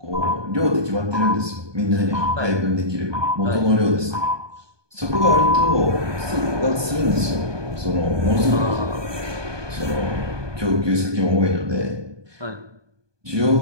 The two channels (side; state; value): left; late; 1.2 ms